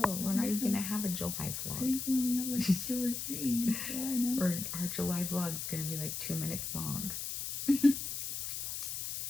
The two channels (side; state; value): left; noise; hiss, 4 dB below the sound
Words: We're not even going to have a July I vlog. think we only have like 2 or 3 in July now. Or our July vlog is going to be like 2 minutes long.